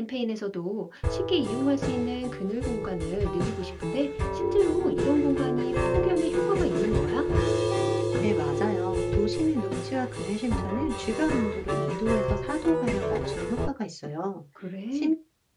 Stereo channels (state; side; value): identical; both; correlation 1.00